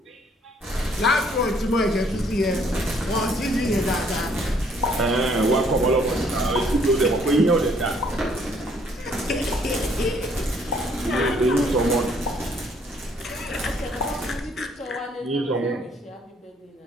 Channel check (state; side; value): normal; both; correlation 0.64